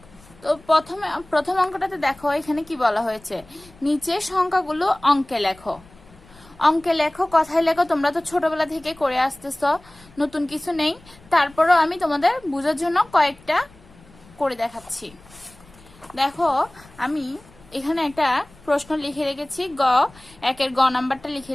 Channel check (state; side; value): noise; left; rumble, 25 dB below the sound